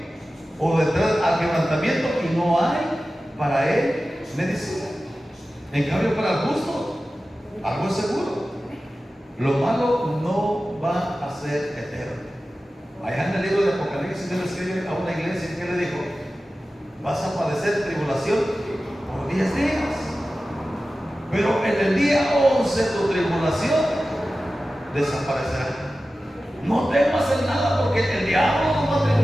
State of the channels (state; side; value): normal; both; correlation 0.95